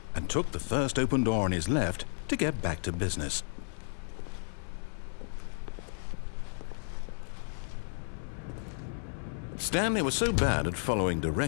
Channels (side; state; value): right; silent; 56 dB below the other